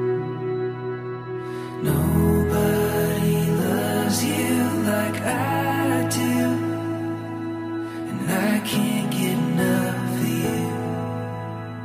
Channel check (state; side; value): identical; both; correlation 1.00